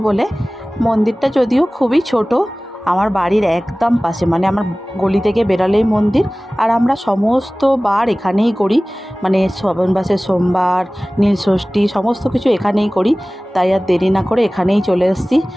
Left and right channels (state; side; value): normal; both; correlation 0.98